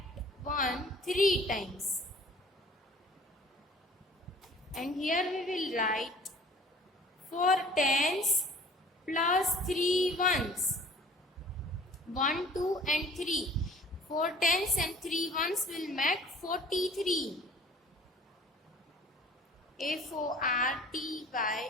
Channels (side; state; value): both; normal; correlation 0.49